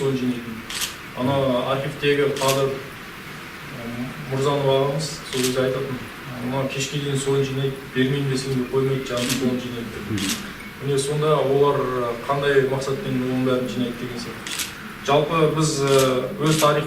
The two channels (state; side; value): identical; both; correlation 1.00